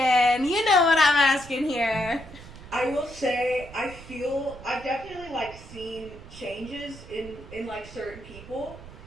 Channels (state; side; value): noise; right; rumble, 17 dB below the sound